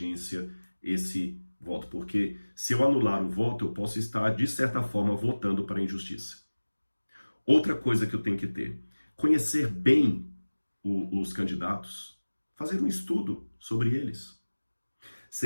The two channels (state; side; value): inverted; both; correlation -1.00